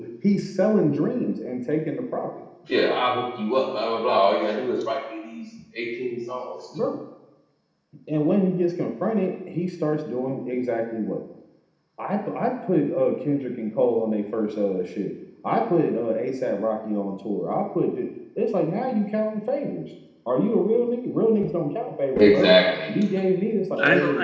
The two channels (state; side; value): identical; both; correlation 1.00